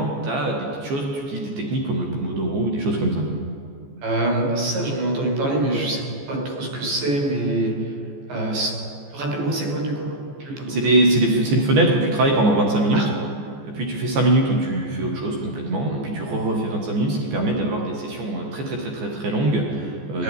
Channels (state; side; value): late; left; 14 ms